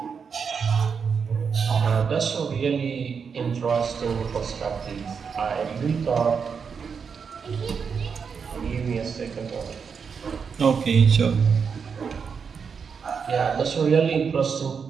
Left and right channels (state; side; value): quieter; left; 6.1 dB